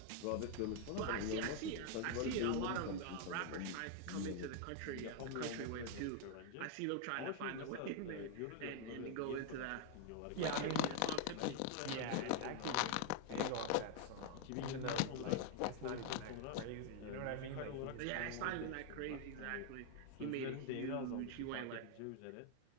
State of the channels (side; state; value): both; different; correlation 0.00